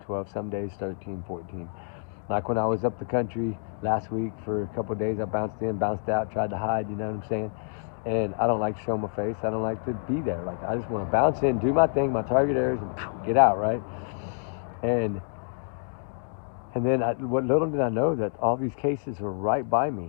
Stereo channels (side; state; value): right; silent; 60 dB below the other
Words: 12. Some days 13, 14. Like when I was up the country last week for a couple of days, I bounced in, bounced out, tried to hide, you know what I'm saying? And I don't like to show my face. I don't like to be there. Like, I just want to bounce in, do my thing, my target areas, and get out, right? And then what little did I know that all these cases were right by me,